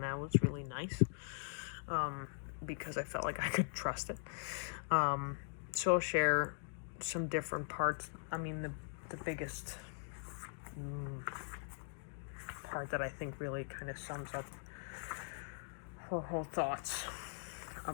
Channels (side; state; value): right; silent; digital silence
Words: that was really nice, because I felt like I could trust it. So I'll share some different parts. I mean, the biggest part that I think really kind of sums up her whole thoughts